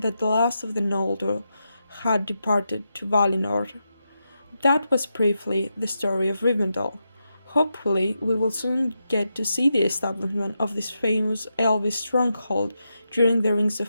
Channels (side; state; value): both; inverted; correlation -0.87